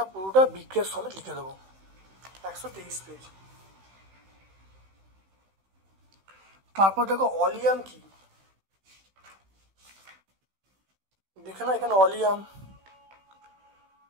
পুরোটা বিক্রিয়া সমেত লিখে দেবো। 123 পেজ। তারপর দেখো অলিয়াম কি, দেখে নাও এখানে অলিয়াম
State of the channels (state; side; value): late; left; 16 ms